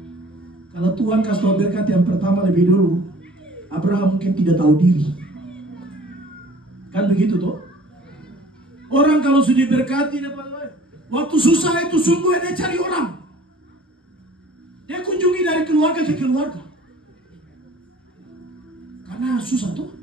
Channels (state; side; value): normal; both; correlation 0.49